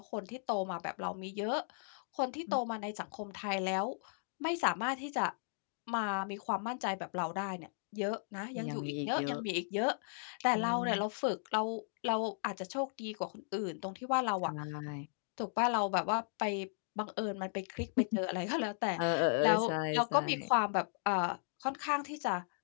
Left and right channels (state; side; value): silent; right; digital silence